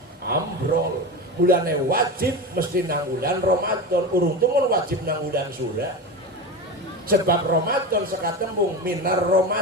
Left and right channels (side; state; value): both; normal; correlation 0.23